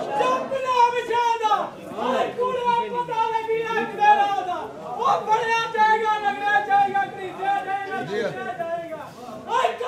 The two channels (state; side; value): identical; both; correlation 1.00